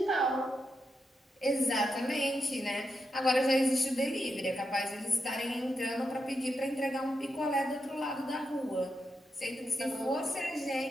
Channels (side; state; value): both; normal; correlation 0.85